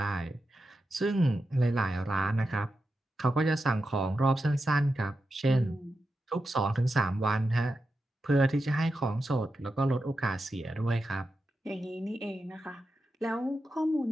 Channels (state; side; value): normal; both; correlation 0.89